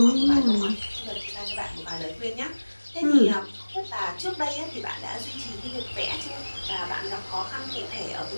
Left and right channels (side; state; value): both; inverted; correlation -1.00